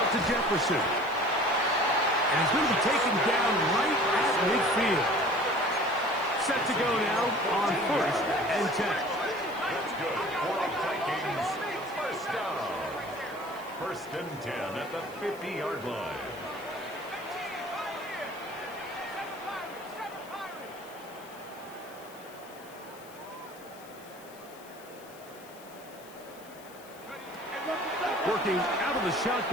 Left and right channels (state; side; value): noise; left; hiss, 22 dB below the sound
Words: to Jefferson. And he's going to be taken down right at midfield. Set to go now on 1st and 10. That's good for the Vikings. First down. 1st and 10 at the 50-yard line. Working out of the